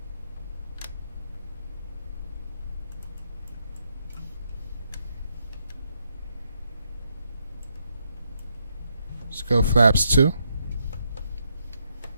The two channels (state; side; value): inverted; both; correlation -0.79